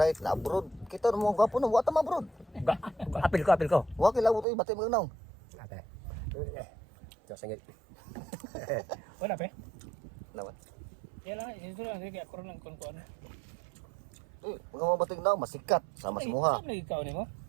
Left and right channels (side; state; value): left; drops out; at 4.5 s